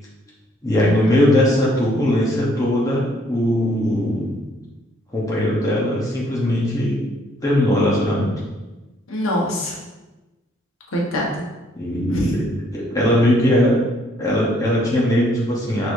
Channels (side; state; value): both; normal; correlation 0.66